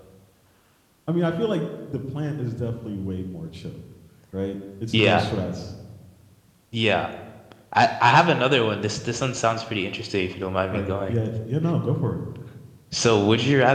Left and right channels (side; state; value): both; identical; correlation 1.00